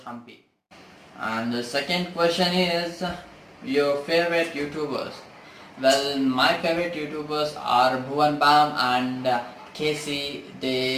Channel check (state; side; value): identical; both; correlation 1.00